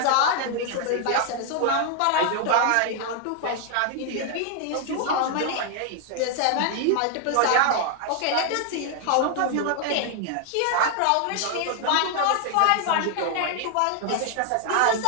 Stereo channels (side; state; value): both; different; correlation 0.00